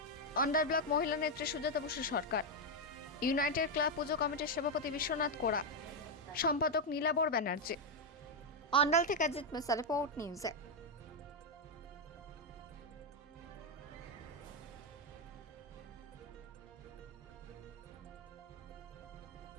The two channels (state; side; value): normal; both; correlation 0.03